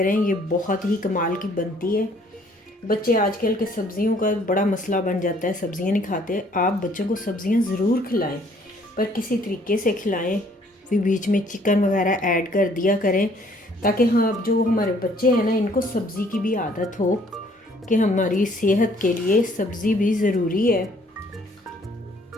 ये बहुत ही कमाल की बनती है। बच्चे आजकल के सब्ज़ियों का बड़ा मसला बन जाता है, सब्ज़ियां नहीं खाते। आप बच्चों को सब्ज़ियां ज़रूर खिलाएं, पर किसी तरीके से खिलाएं, फिर बीच में चिकन वगैरह ऐड कर दिया करें, ताकि हाँ जो हमारे बच्चे हैं ना, इनको सब्ज़ी की भी आदत हो कि हमारी सेहत के लिए सब्ज़ी भी ज़रूरी है।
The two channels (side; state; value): both; normal; correlation 0.61